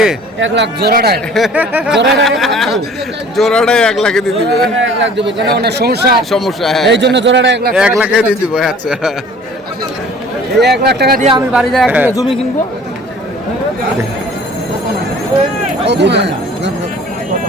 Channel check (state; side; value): normal; both; correlation 0.49